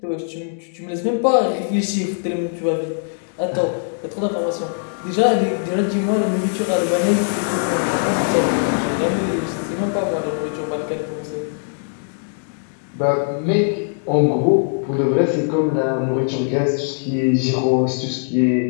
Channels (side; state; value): right; silent; digital silence